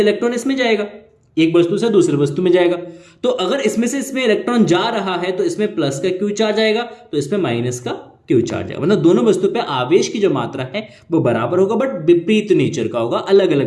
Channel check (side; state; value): both; identical; correlation 1.00